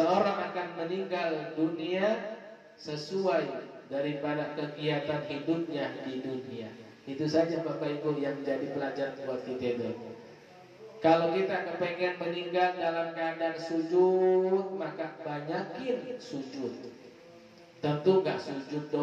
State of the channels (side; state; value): both; identical; correlation 1.00